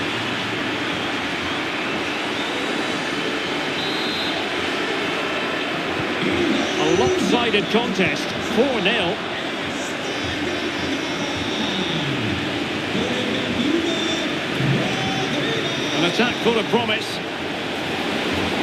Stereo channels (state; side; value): identical; both; correlation 1.00